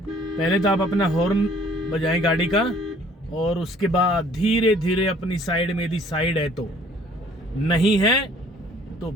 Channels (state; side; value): normal; both; correlation 0.56